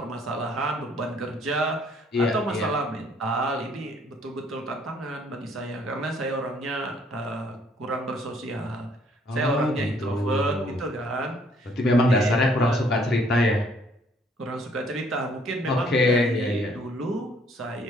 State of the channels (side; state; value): both; normal; correlation 0.63